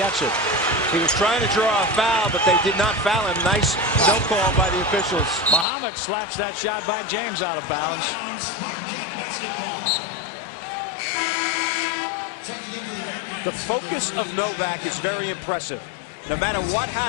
it. He was trying to draw a foul, but they did not foul him. Nice no call by the officials. Muhammad slaps that shot by James out of bounds. The focus of Novak is very impressive. No matter what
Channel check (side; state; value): right; drops out; at 5.7 s